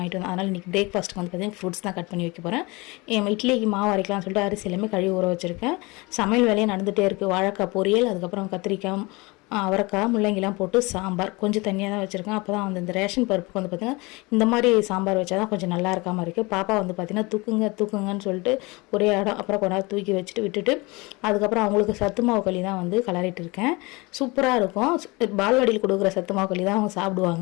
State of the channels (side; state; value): right; quieter; 24.9 dB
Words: வந்தோம். அதனால் இன்றைக்கி பிரேக்ஃபாஸ்ட்டுக்கு வந்து பார்த்தீங்கன்னா ஃப்ரூட்ஸ் தான் கட் பண்ணி வைக்க போகிறேன். இட்லிக்கு மாவு அரைக்கலாம்னு சொல்லிட்டு அரிசி எல்லாமே கழுவி ஊற வச்சுருக்கேன். சமையல் வேலையை நடந்துகிட்டே இருக்குது. வாழைக்காய் பொரியல், அதுக்கப்புறம் கத்திரிக்காய், அவரைக்காய், முள்ளங்கிலாம் போட்டு சாம்பார் கொஞ்சம் தனியாக தான் வச்சுருக்கேன். அப்போ தான் வந்து இந்த ரேஷன் பருப்புக்கு வந்து பார்த்திங்கன்னா இந்த மாதிரி சாம்பார் வச்சா தான் கொஞ்சம் நல்லா இருக்காமல் இருக்குது. பாப்பா வந்து பார்த்திங்கன்னா தூக்குங்கன்னு சொல்லிட்டு ஒரே இடம் அப்புறம் கொண்டாந்து தூக்கி வச்சுட்டு விட்டுட்டு அதுக்கப்புறம் அவங்களுக்கு சத்து மாவு களி தான் வந்து கலரிட்டு இருக்கேன். சூப்பராக இருக்கும். பால்வாடியில் கொடுக்குற சத்து மாவு களி தான் அவங்க